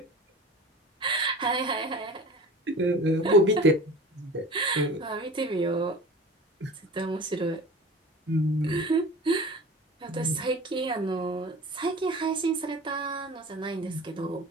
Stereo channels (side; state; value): both; normal; correlation 0.38